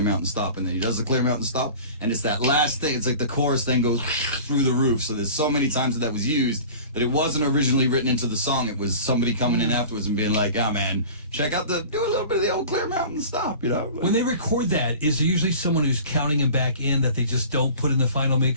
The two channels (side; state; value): both; inverted; correlation -0.40